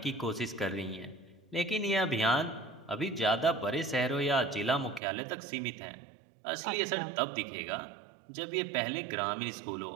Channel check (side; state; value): left; drops out; at 5.0 s